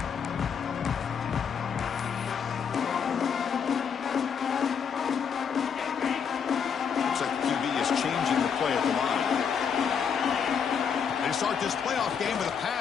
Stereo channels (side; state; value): right; quieter; 7.0 dB